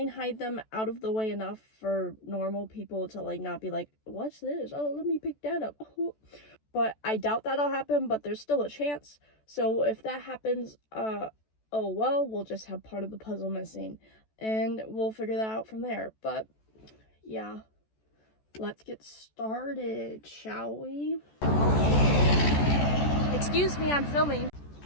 hide them out of the way enough for normal people to like not be like, what's this? Oh, let me pick that up. Oh. But I doubt that'll happen, but there's still a chance. So if that happens, oh well, we'll just have part of the puzzle missing. And we'll figure that out from there. But yeah, let's get started, shall we? Okay. Excuse me, I'm filming.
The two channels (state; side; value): late; right; 14 ms